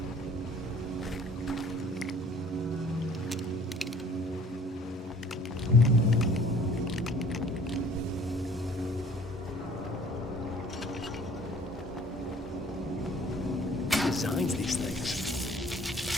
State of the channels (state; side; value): normal; both; correlation 0.53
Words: Designs these things.